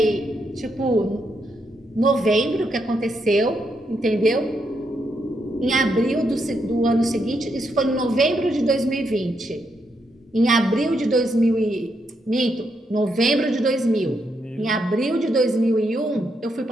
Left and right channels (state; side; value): normal; both; correlation 0.80